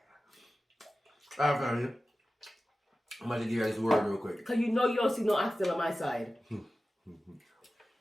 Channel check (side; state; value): both; normal; correlation 0.95